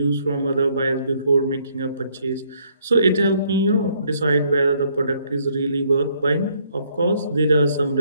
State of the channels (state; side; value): inverted; both; correlation -0.68